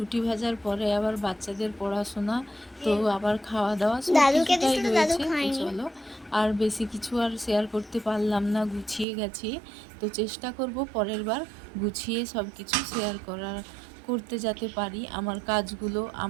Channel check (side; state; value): left; drops out; at 9.1 s